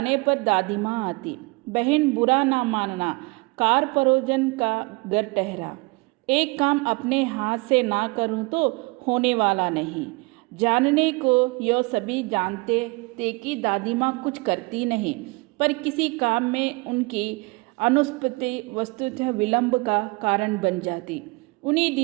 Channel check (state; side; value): quieter; left; 26.7 dB